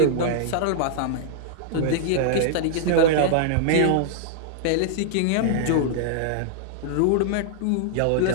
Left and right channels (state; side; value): different; both; correlation -0.01